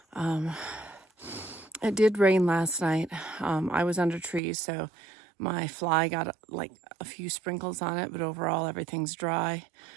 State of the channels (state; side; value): drops out; left; at 4.4 s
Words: It did rain last night. I was under trees, so my fly got like a few sprinkles on it, but overall everything's dry.